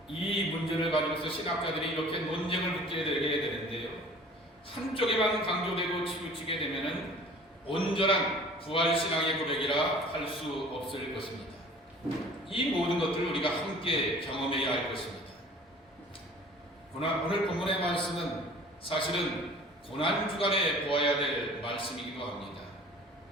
이 문제를 가지고서 신학자들이 이렇게 논쟁을 붙게 되게 되는데요. 한쪽에만 강조되고 치우치게 되면은 온전한 부활신앙의 고백이라 할 수 없을 것입니다. 이 모든 것들을 우리가 함께 경험해야 할 것입니다. 오늘 본문의 말씀은 사실은 고난주간에 보아야 될 말씀이기도 합니다.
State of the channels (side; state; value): both; normal; correlation 0.47